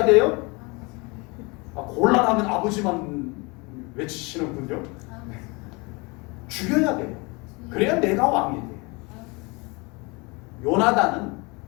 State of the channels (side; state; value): right; quieter; 27.6 dB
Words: 돼요? 곤란하면 아버지만 외치시는군요. 죽여야 돼요. 그래야 내가 왕이 돼요. 요나단은